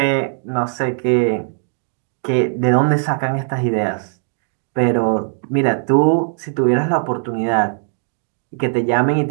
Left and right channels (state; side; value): silent; left; digital silence